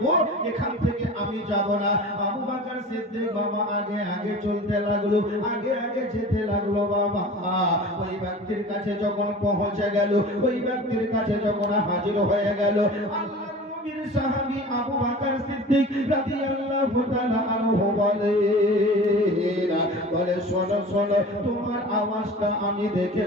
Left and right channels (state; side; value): normal; both; correlation 0.38